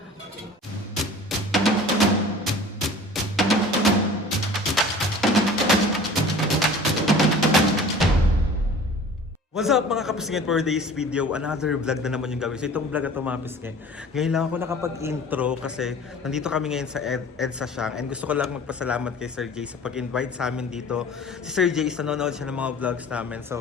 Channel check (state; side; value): normal; both; correlation 0.44